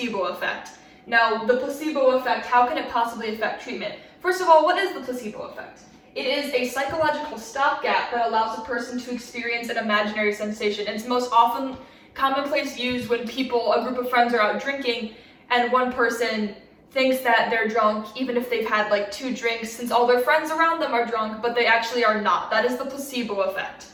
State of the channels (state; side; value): identical; both; correlation 1.00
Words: effect. Now, the placebo effect, how can it possibly affect treatment? First of all, what is the placebo effect? It is a psychological stopgap that allows a person to experience an imaginary sensation. It's most often commonplace used when a group of friends are out drinking, and one person thinks that they're drunk even if they've had like 2 drinks, since all their friends around them are drunk, but they actually are not. That is the placebo effect.